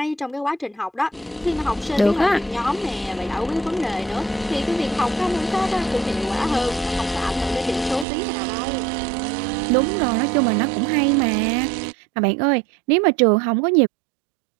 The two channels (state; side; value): drops out; left; at 8.1 s